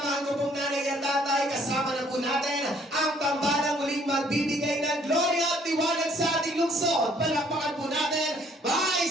ko pong nanay at tatay, kasama na po natin ang tambalang muling magbibigay ng gloria at liwanag sa ating lungsod. Palakpakan po natin,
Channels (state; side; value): normal; both; correlation 0.61